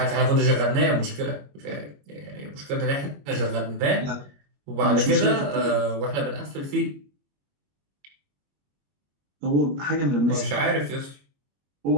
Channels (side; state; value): left; late; 21 ms